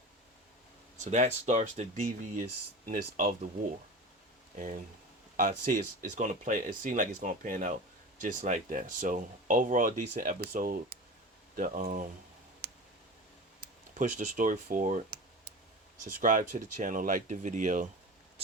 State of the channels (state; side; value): normal; both; correlation 0.31